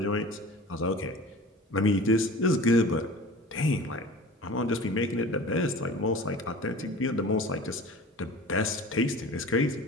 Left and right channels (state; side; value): normal; both; correlation 0.39